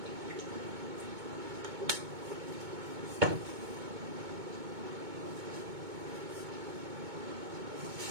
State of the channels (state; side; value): late; left; 2.2 ms